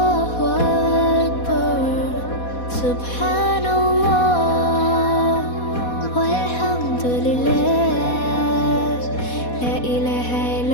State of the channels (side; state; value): right; late; 4.2 ms